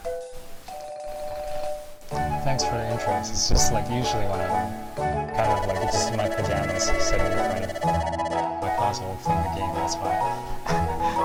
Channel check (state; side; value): identical; both; correlation 1.00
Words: Thanks for the interest. It's just like usually when I'm kind of like just in my pajamas sitting in front of my console playing the game, that's why.